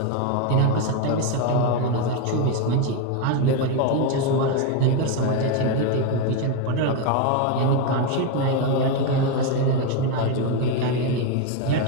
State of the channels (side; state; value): both; different; correlation 0.02